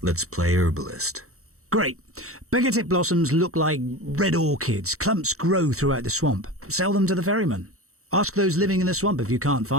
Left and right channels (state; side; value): late; left; 0.64 ms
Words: let's play herbalist. Great. Begatip blossoms look like red orchids. Clumps grow throughout the swamp. Sell them to the ferryman. Ask those living in the swamp if you can't